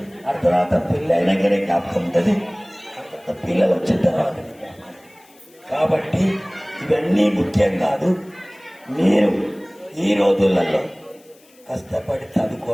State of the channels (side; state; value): left; noise; hiss, 29 dB below the sound